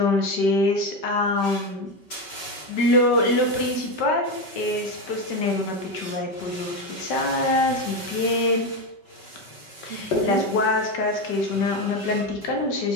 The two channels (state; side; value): late; right; 5.2 ms